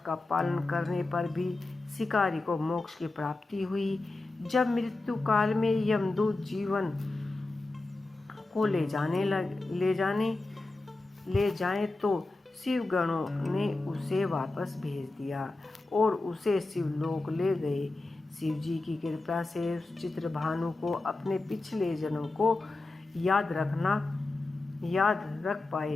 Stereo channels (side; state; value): right; quieter; 3.1 dB